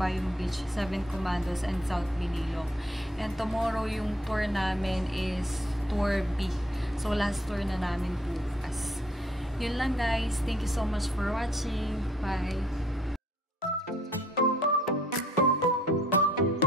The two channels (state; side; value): normal; both; correlation 0.64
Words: Beach, Seven Commandos, and South Minilok. And tomorrow, yung tour namin is Tour B. So, last tour na namin bukas. Yun lang guys. Thank you so much for watching. Bye!